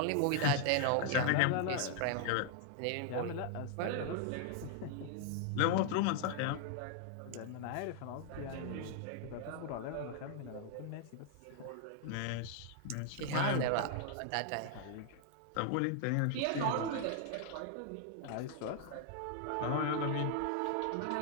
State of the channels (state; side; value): different; both; correlation 0.00